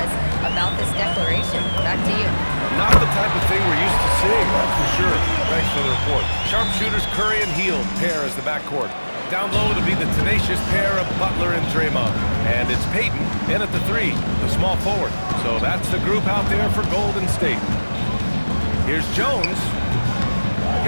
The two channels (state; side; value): inverted; both; correlation -1.00